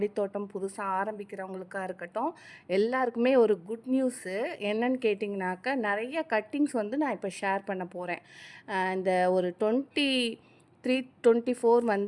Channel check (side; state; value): both; identical; correlation 1.00